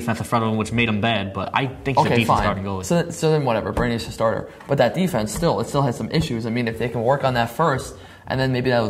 in front of him, which made him bad. But I think he's a decent starting goalie. So then whatever, Bernier's a starter, but that defense still has some issues. I mean, if they can work on that first, and then maybe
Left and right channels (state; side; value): identical; both; correlation 1.00